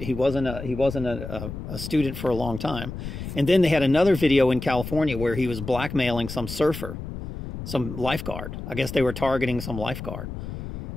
wasn't a student for a long time. And then they had another video in California where he was blackmailing some surfer, some lifeguard. I guess they were targeting some lifeguard.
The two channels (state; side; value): noise; left; rumble, 8 dB below the sound